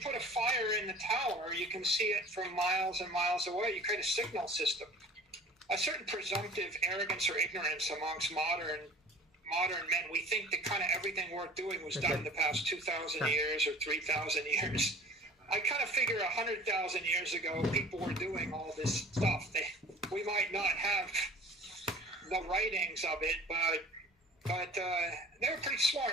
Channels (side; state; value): both; normal; correlation 0.46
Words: a fire in the tower, you can see it from miles and miles away. You create a signal system. A certain presumptive arrogance or ignorance amongst modern men. We think that kind of everything worth doing was done in the past 2,000 years or 3,000 years. I kind of figure 100,000 years ago, people were doing all this stuff. We might not have the writings of it, but they were pretty